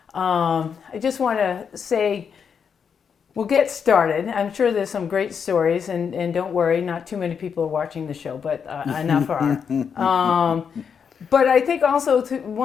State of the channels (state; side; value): quieter; right; 6.8 dB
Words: I just want to say, we'll get started. I'm sure there's some great stories, and don't worry, not too many people are watching the show, but enough are. But I think also